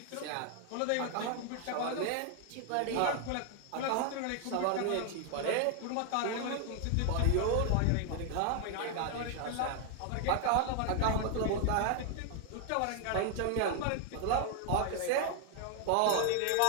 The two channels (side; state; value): both; different; correlation 0.00